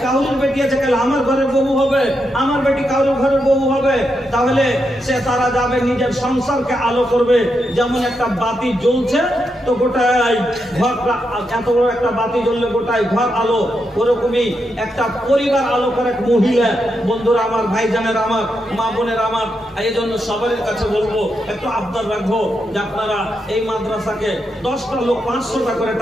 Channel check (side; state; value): both; normal; correlation 0.84